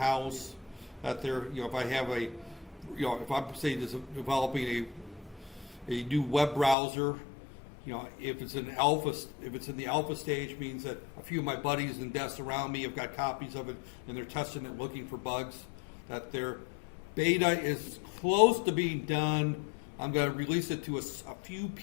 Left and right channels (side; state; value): right; drops out; at 6.8 s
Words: That there, if I have a, if I'm say developing a new web browser, if it's in the alpha stage, means that a few of my buddies and desks around me have got copies of it and they're testing it, looking for bugs. That their beta is close to being done. I'm going to release it to a few